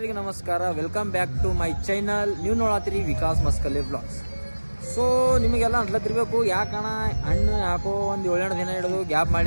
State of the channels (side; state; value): both; inverted; correlation -1.00